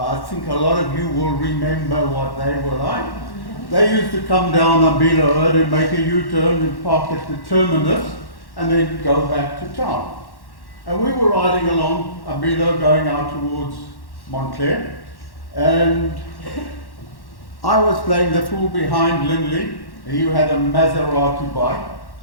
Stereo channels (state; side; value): late; right; 1.1 ms